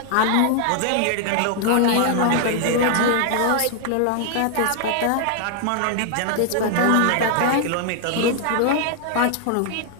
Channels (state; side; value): different; both; correlation 0.00